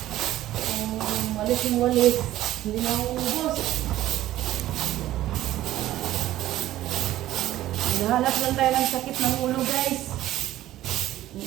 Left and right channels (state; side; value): quieter; left; 14.3 dB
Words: Kung walis yung walis, hindi na uubos. Nahanap lang tayo ng sakit ng ulo guys.